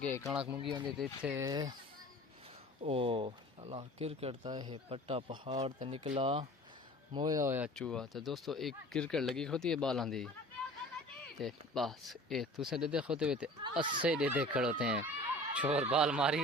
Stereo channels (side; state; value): both; normal; correlation 0.44